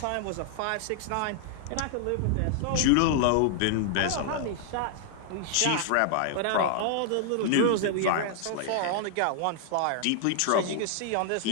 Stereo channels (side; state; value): both; different; correlation 0.00